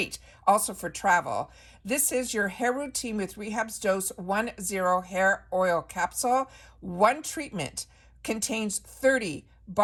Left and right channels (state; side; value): identical; both; correlation 1.00